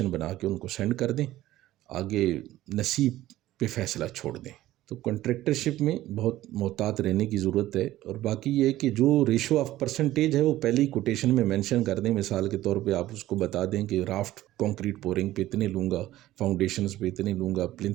بنا کے ان کو سینڈ کر دیں، آگے نصیب پہ فیصلہ چھوڑ دیں. تو کنٹریکٹرشپ میں بہت محتاط رہنے کی ضرورت ہے. اور باقی یہ ہے کہ جو ریشو آف پرسنٹیج ہے وہ پہلے ہی کوٹیشن میں مینشن کر دیں. مثال کے طور پہ آپ اس کو بتا دیں کہ رافٹ کانکریٹ پورنگ پہ اتنے لوں گا، فاؤنڈیشنز پہ اتنے لوں گا،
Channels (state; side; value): quieter; left; 15.2 dB